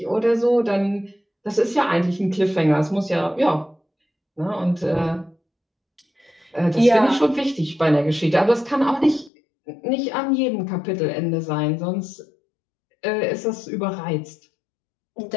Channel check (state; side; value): drops out; right; at 9.3 s